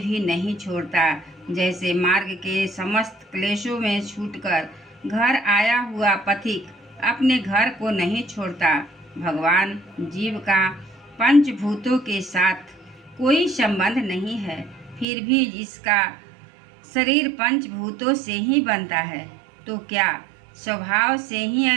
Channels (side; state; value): left; drops out; at 15.1 s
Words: नहीं छोड़ता। जैसे मार्ग के समस्त क्लेशों में छूटकर घर आया हुआ पथिक अपने घर को नहीं छोड़ता। भगवान जीव का पंचभूतों के साथ कोई संबंध नहीं है, फिर भी जिसका शरीर पंचभूतों से ही बनता है, तो क्या स्वभाव से ही